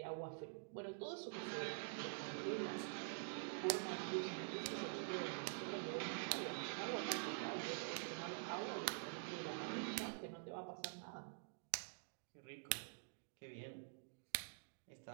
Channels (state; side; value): silent; left; digital silence